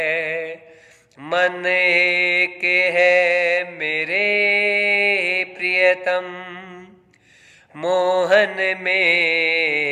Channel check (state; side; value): identical; both; correlation 1.00